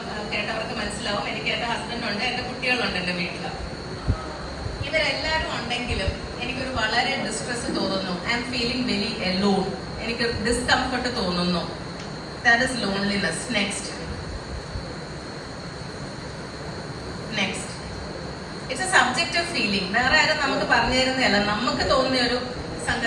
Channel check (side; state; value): both; identical; correlation 1.00